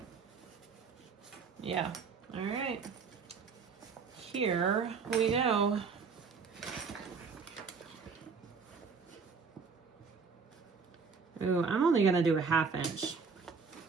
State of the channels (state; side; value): quieter; left; 5.3 dB